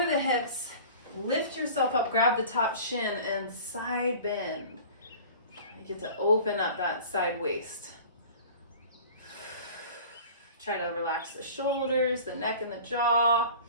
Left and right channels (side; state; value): both; inverted; correlation -0.42